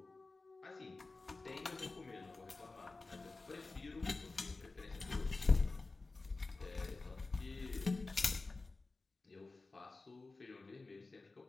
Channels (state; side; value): quieter; right; 3.6 dB